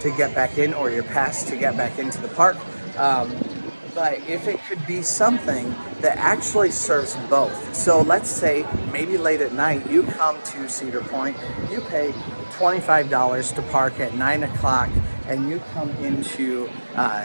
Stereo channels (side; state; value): both; inverted; correlation -1.00